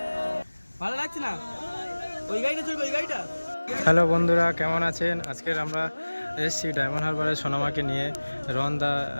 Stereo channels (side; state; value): both; inverted; correlation -1.00